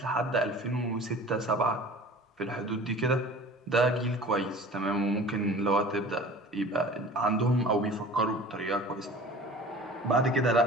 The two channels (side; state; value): both; normal; correlation 0.42